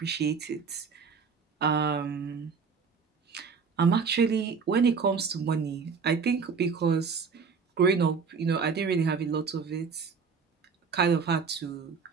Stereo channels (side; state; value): left; quieter; 5.5 dB